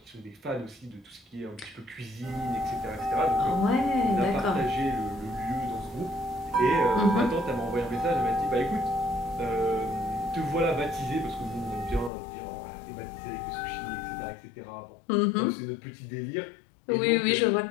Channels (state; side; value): drops out; right; at 12.1 s